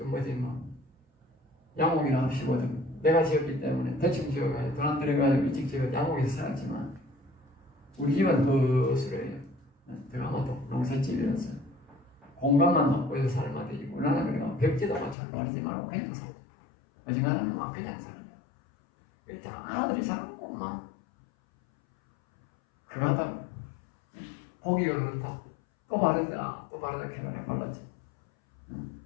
양옥이나 합시거든. 내가 지었기 때문에 대충 지어가지고 돈 안 들여가지고 일찍 지어 양옥에서 살았지만 우리 집은 거수래요. 들어가면 농사집이라서 공간만 확보해서 살면 되지. 나는 그래가 벽지도 잘 바르지 말고 그냥 살자. 어지간하면 막 그냥 살자. 일단 아들이 살았고 막 그거 하다 보기가 그렇다. 또 바르자 캐나에 발랐지.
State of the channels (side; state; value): right; drops out; at 15.2 s